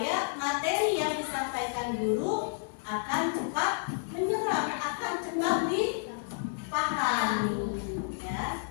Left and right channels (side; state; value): right; silent; digital silence